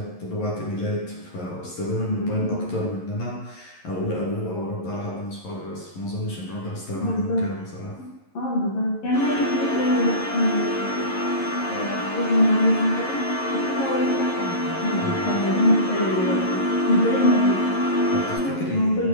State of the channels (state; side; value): late; right; 11 ms